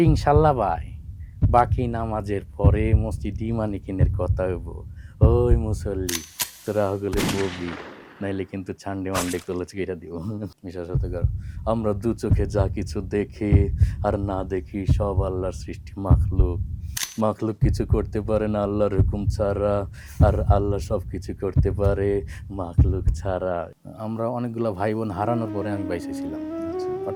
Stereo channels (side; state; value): both; identical; correlation 1.00